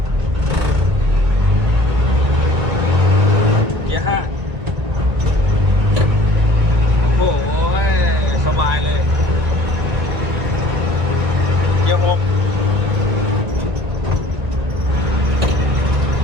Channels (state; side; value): late; left; 1.5 ms